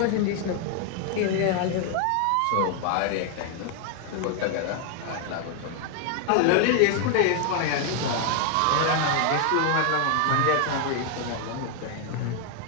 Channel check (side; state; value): both; different; correlation 0.00